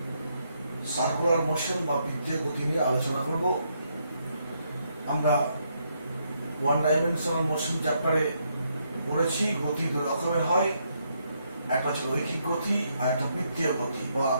সার্কুলার মোশন বা বৃত্তীয় গতি নিয়ে আলোচনা করব। আমরা ওয়ান ডাইমেনশনাল মোশন চ্যাপ্টারে পড়েছি গতি দুই রকমের হয়, একটা হচ্ছে রৈখিক গতি আর একটা বৃত্তীয় গতি বা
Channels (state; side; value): inverted; both; correlation -0.76